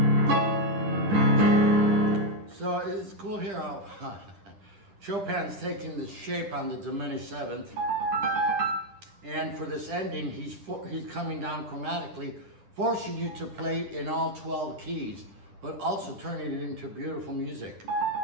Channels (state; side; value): late; left; 10 ms